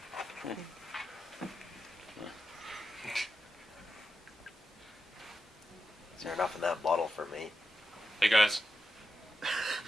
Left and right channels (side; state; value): both; normal; correlation 0.89